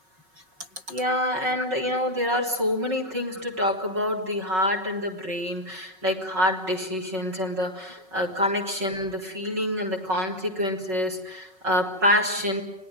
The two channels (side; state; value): left; late; 5.4 ms